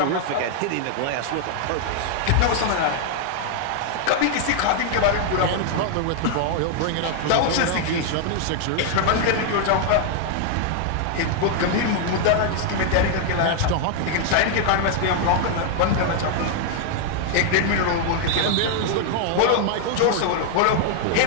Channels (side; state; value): both; different; correlation 0.00